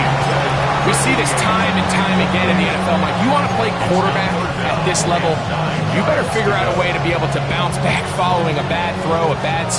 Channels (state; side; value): identical; both; correlation 1.00